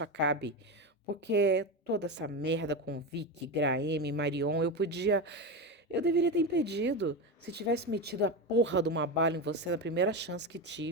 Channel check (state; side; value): normal; both; correlation 0.17